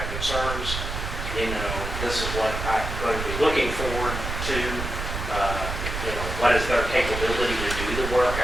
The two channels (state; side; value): noise; right; rumble, 5 dB below the sound